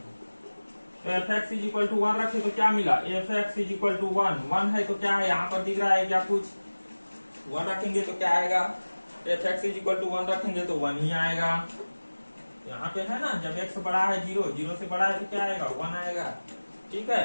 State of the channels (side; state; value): both; inverted; correlation -1.00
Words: तो f x is equal to 1 रखे तो क्या मिला, f x is equal to 1 है तो क्या है यहाँ पर दिख रहा है क्या कुछ, 1 रखेंगे तो क्या आएगा, f x is equal to 1 रखेंगे तो 1 ही आएगा। यहाँ पे है ना, जब x बड़ा है 0 से बड़ा है तो क्या आएगा, 1 आएगा। ठीक है,